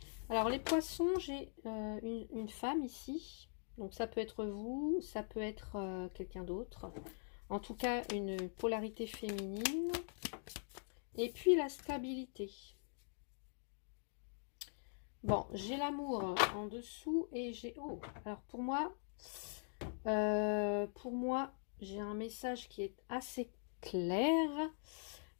Alors, les poissons, j'ai une femme ici. Donc, ça peut être vous, ça peut être quelqu'un d'autre. En tout cas, une polarité féminine. Et puis, la stabilité. Bon, j'ai l'amour en dessous et j'ai... Oh, alors pour moi, j'ai un message qui est assez clair.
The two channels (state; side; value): silent; right; digital silence